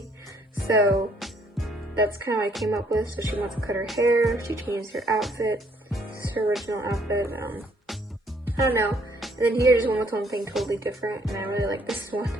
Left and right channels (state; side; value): normal; both; correlation 0.65